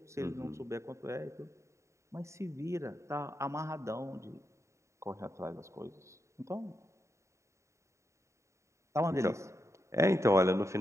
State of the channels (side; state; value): left; late; 0.14 ms